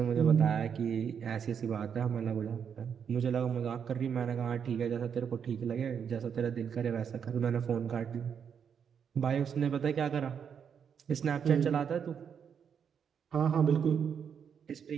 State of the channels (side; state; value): left; quieter; 7.4 dB